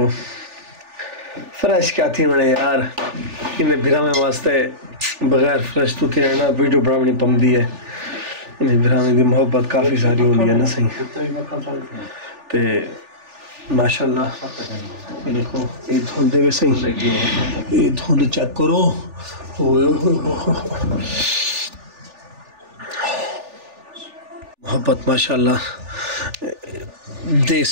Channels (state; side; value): late; left; 3.4 ms